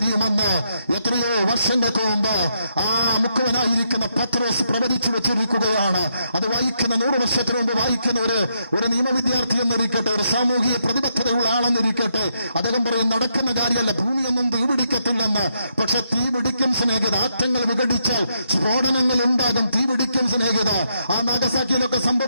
എത്രയോ വർഷങ്ങൾക്ക് മുമ്പ് ആ മുഖവനായിരിക്കുന്ന പത്രോസ് പ്രവചിച്ചു വെച്ചിരിക്കുകയാണ്. അത് വായിക്കുന്ന 100 വർഷത്തിന് മുമ്പ് വായിക്കുന്ന ഒരു നിയമവിദ്യാർത്ഥി എന്നിരിക്കട്ടെ, ഒരു സാമൂഹിക പ്രതിബദ്ധതയുള്ള ആളെന്നിരിക്കട്ടെ, അദ്ദേഹം പറയും നടക്കുന്ന കാര്യമല്ല, ഭൂമിയൊന്നും തീ പിടിക്കത്തില്ലെന്ന്. പക്ഷെ തീ പിടിക്കും സ്നേഹിത. ആറ്റങ്ങൾ വിഘടിച്ചാൽ സ്ഫോടനങ്ങൾ ഉണ്ടാകും, തീ പിടിക്കും സ്നേഹിത. ആ നാഗസാക്കിയിലൊക്കെ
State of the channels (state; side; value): inverted; both; correlation -0.79